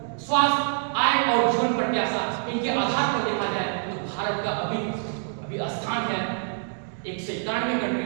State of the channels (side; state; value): left; silent; digital silence